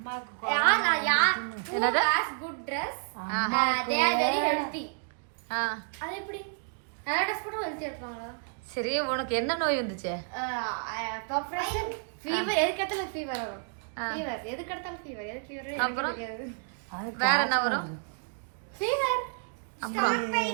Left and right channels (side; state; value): left; silent; 58 dB below the other